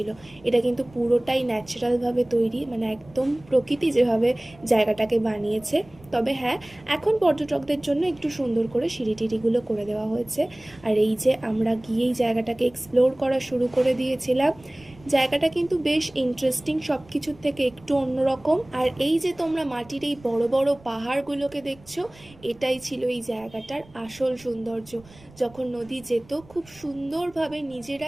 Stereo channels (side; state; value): right; noise; rumble, 24 dB below the sound